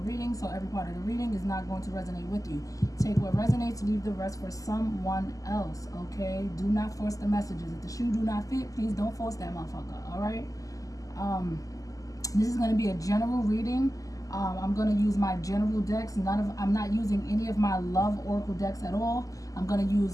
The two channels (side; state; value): right; late; 0.17 ms